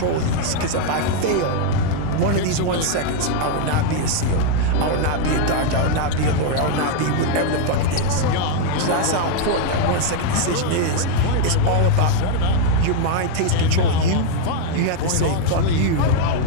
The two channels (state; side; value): different; both; correlation 0.00